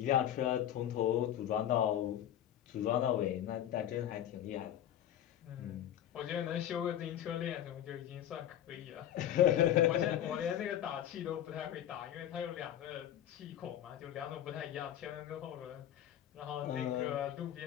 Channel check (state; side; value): quieter; right; 11.2 dB